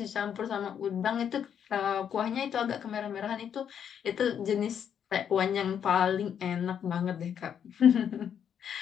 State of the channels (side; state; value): right; quieter; 8.5 dB